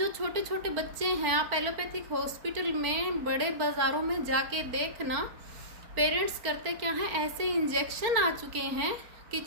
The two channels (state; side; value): late; left; 4.5 ms